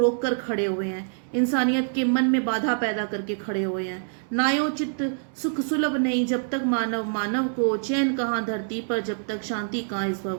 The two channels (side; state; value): left; silent; digital silence